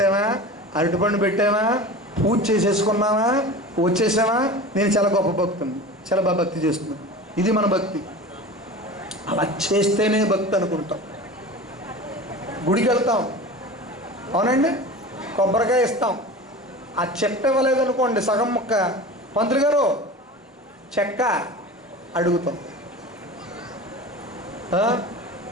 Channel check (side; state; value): both; normal; correlation 0.34